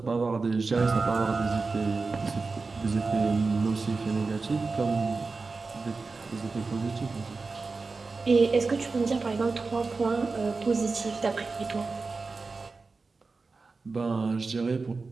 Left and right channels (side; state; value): left; quieter; 4.1 dB